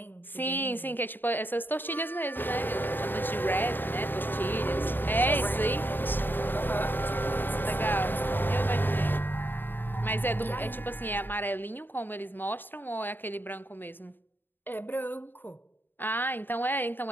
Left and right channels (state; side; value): late; right; 0.094 ms